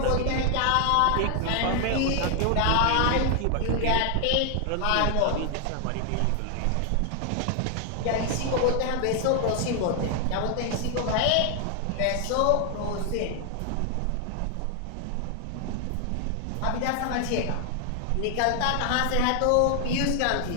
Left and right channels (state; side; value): different; both; correlation 0.00